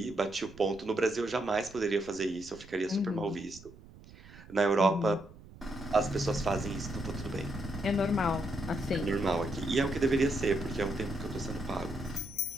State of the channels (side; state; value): right; noise; rumble, 20 dB below the sound